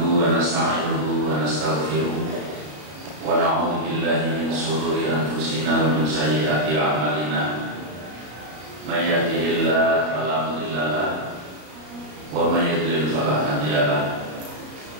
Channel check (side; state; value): left; late; 33 ms